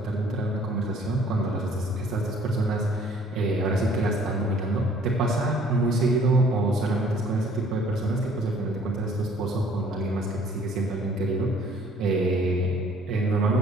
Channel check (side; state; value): both; normal; correlation 0.57